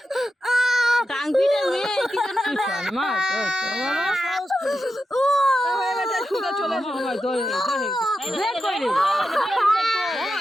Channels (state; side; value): normal; both; correlation 0.89